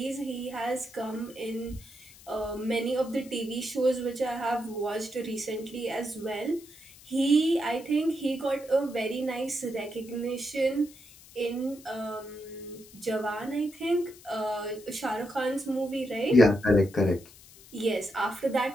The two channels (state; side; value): noise; left; hiss, 21 dB below the sound